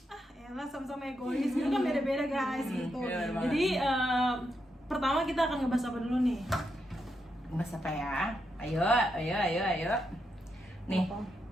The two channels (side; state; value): both; normal; correlation 0.83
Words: elah sama-sama egois. Itu kan beda-beda guys gitu. bener banget. Jadi pertama kita akan ngebahas apa dulu nih? Mas apa ya? Ayo. Nih,